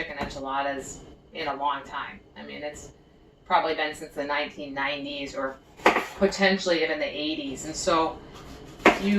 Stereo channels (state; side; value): identical; both; correlation 1.00